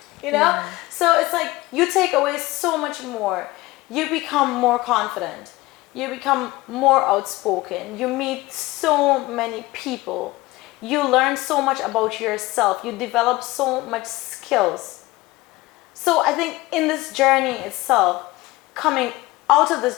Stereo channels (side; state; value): right; quieter; 19.8 dB